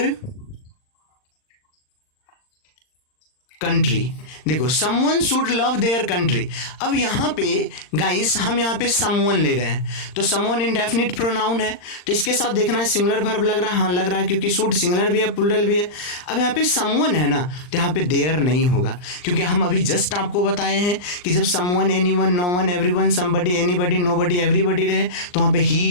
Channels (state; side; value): late; right; 39 ms